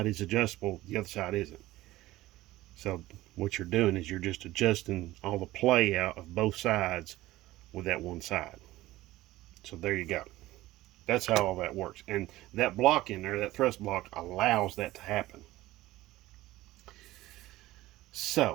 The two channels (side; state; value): left; quieter; 17.0 dB